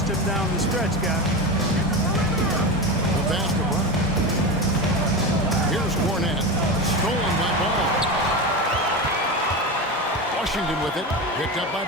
him down the stretch, guys. The basketball. Here's Cornette. Stolen by Ball. Washington with it. Picked up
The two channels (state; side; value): normal; both; correlation 0.21